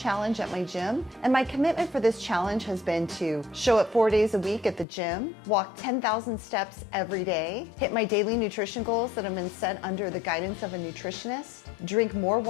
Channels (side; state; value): right; drops out; at 4.9 s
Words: at my gym, and my commitment for this challenge has been to show up 4 days a week at the gym, walk 10,000 steps every day, hit my daily nutrition goals that have been set under the guidance of a nutritionist, drink more